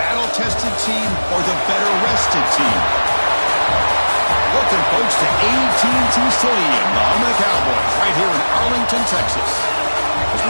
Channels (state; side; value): inverted; both; correlation -1.00